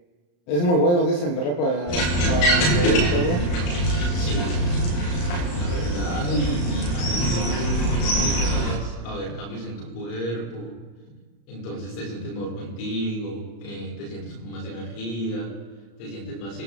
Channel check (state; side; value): late; right; 34 ms